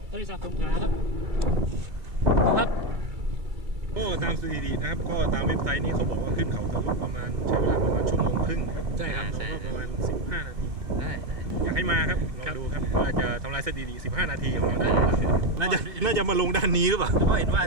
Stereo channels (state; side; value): late; left; 2.4 ms